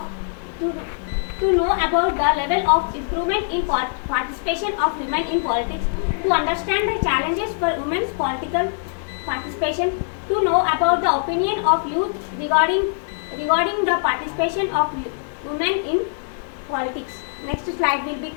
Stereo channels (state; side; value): silent; right; 63 dB below the other